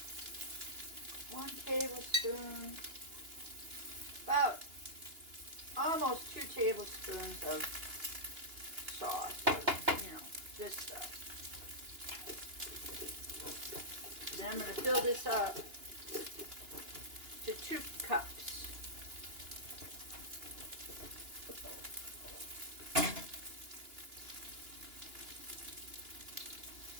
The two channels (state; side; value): late; left; 2.9 ms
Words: 1 tablespoon, about almost 2 tablespoons of sauce, you know, this stuff. Then I'm going to fill this up to 2 cups.